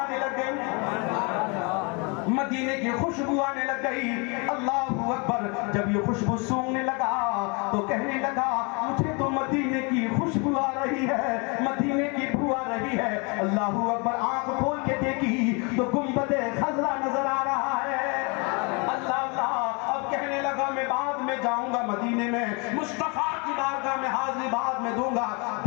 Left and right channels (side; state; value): right; quieter; 31.5 dB